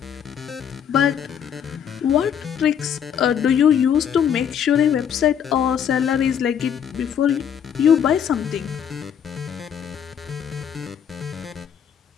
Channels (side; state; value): right; quieter; 8.4 dB